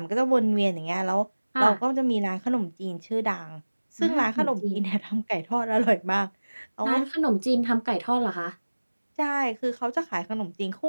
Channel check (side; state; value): both; inverted; correlation -1.00